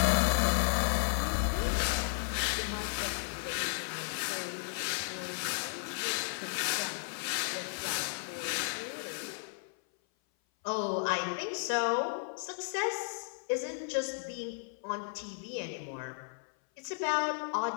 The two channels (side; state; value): right; silent; 55 dB below the other